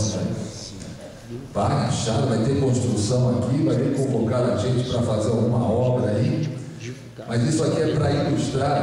Né? Pá, enxada, vai ter construção aqui, vai ter que convocar a gente para fazer alguma obra aí. Mas isso aqui é para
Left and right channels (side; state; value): both; identical; correlation 1.00